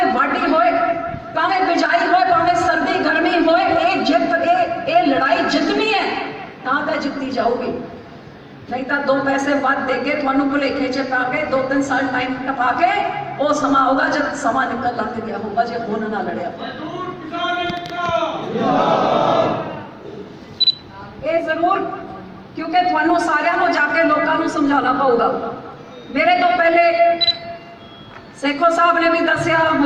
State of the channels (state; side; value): identical; both; correlation 1.00